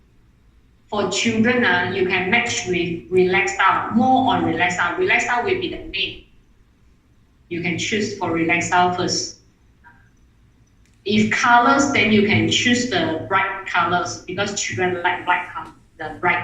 for children, you can match with relaxed style, more on relaxed style. Relaxed style will be the main. You can choose for relaxed style first. If colors, then you can choose the bright colors because children like bright color, the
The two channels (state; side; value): identical; both; correlation 1.00